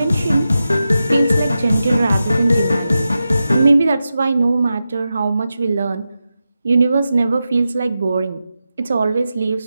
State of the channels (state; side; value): inverted; both; correlation -0.91